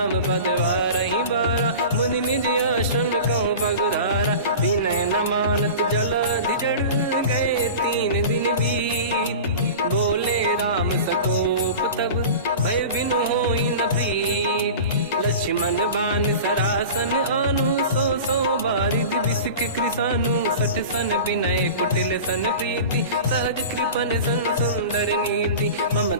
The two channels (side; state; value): both; inverted; correlation -0.34